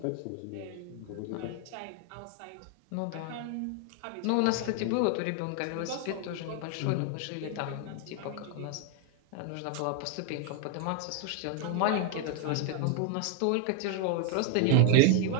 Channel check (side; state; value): both; different; correlation 0.00